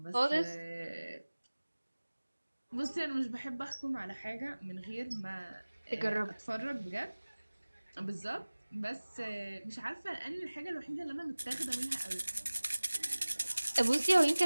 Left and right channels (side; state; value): both; inverted; correlation -1.00